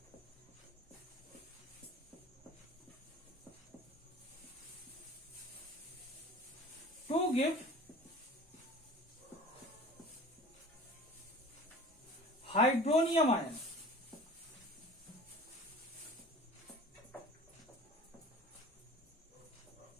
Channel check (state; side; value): normal; both; correlation 0.42